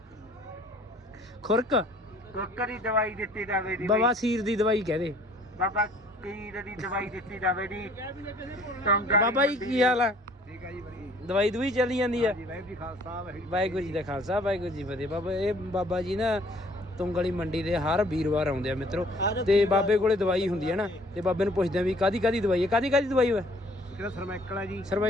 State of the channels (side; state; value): both; normal; correlation 0.56